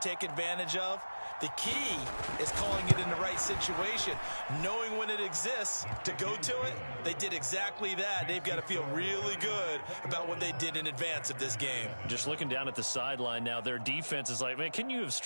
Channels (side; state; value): both; inverted; correlation -1.00